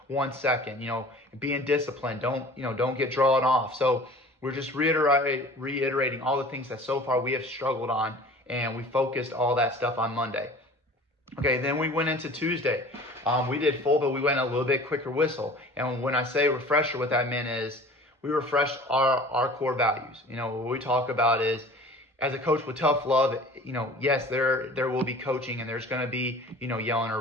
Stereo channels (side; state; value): both; normal; correlation 0.44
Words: 1 second. Being disciplined. Don't get drawn off. So we're just reiterating all the things that so far we have struggled on, and we focused all that stuff on Monday. Okay, then we went into Tuesday. We did full, but we went a little bit quicker whistle. And when I say refresher, what that meant is we refreshed our core values. What we talk about is, as a coach with tough love, yes, there will be coaching, and there's going to be, yelling or